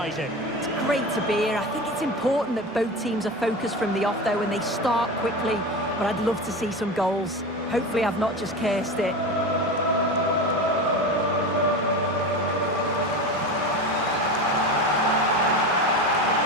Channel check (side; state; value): both; normal; correlation 0.26